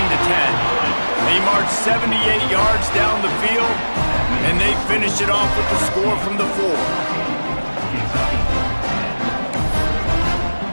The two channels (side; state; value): both; inverted; correlation -1.00